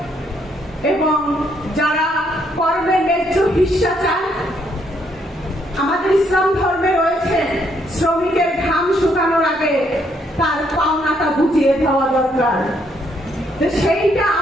এবং যারা কর্মের ন্যায্য হিস্সা চান, আমাদের ইসলাম ধর্মে রয়েছে শ্রমিকের ঘাম শুকানোর আগে তার পাওনাটা বুঝিয়ে দেওয়া দরকার। সেইটা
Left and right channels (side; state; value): both; normal; correlation 0.72